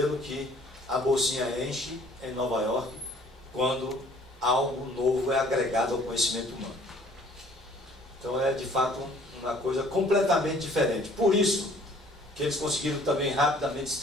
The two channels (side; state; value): both; normal; correlation 0.56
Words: que a bolsinha enche em Nova York quando algo novo é agregado ao conhecimento humano. Então é de fato uma coisa completamente diferente. Por isso que eles conseguiram também rapidamente se